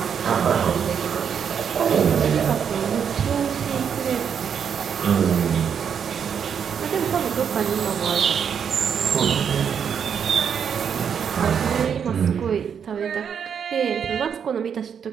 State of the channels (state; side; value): quieter; left; 7.5 dB